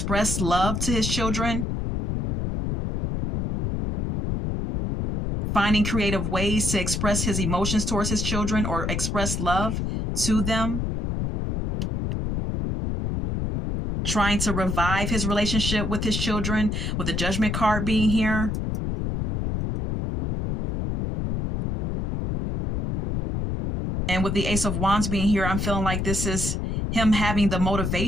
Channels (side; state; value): left; noise; rumble, 1 dB below the sound